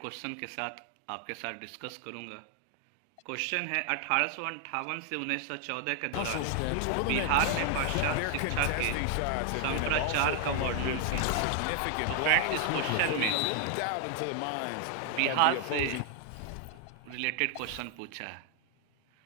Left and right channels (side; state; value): both; different; correlation 0.00